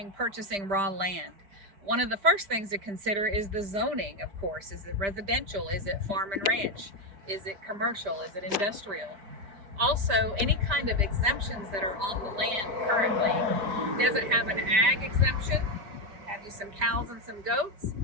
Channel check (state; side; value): late; left; 5.0 ms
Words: purchasing raw land. One of the first things to consider is the zoning, of course. Is it residential? Is it farm and ranch? Is it commercial? Is it industrial? Also, any kind of exemptions that are on the land currently. Does it have an ag exemption? Have you some cows and some goats?